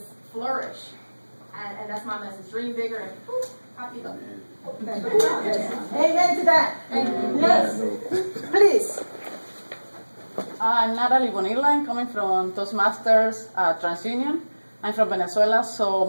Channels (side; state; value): both; inverted; correlation -1.00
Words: flourish. And that's my message. Dream bigger and poof, happy go. Amen to that. Yes. Please. I'm Natalie Bonilla. I'm coming from Toastmasters TransUnion. I'm from Venezuela, so